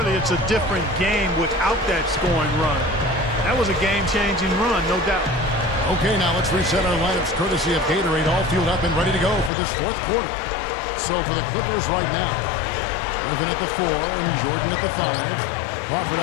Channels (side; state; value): right; drops out; at 9.5 s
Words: it's a different game without that scoring run. That was a game-changing run, no doubt. Okay, now let's reset our lineups courtesy of Gatorade, all fueled up and ready to go for this fourth quarter. So for the Clippers right now, Griffin at the 4 and Jordan at the 5. Crawford